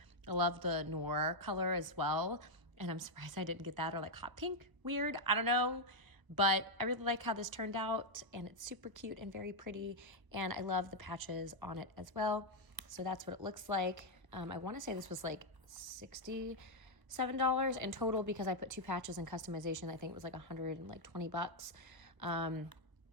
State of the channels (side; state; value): left; late; 1.0 ms